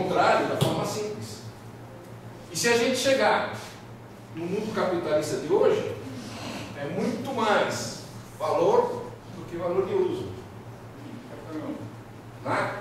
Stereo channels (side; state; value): both; identical; correlation 1.00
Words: da forma simples. E se a gente chegar no mundo capitalista de hoje, é muito mais valor do que valor de uso.